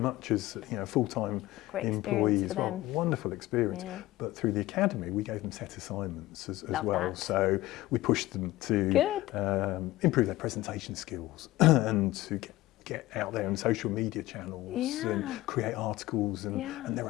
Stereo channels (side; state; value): right; quieter; 17.4 dB